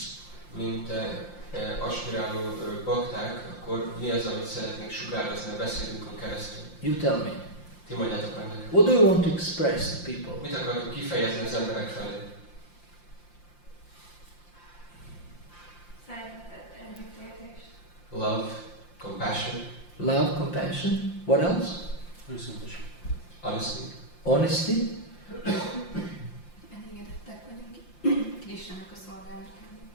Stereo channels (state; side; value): late; right; 5.7 ms